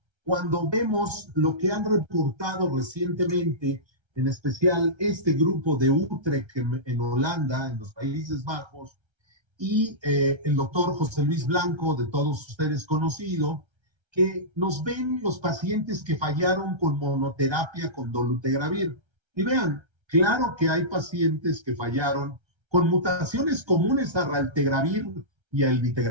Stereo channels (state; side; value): late; left; 1.3 ms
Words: cuando vemos lo que han reportado recientemente, en especial este grupo de Utrecht en Holanda, en los Países Bajos, y el doctor José Luis Blanco, de todos ustedes conocido, que nos ven los pacientes que fallaron con monoterapia con dolutegravir. Y vean, claro que hay pacientes que fallaron con mutaciones comunes a raltegravir y a